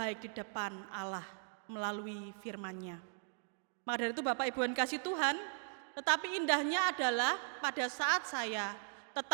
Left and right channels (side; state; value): left; silent; 52 dB below the other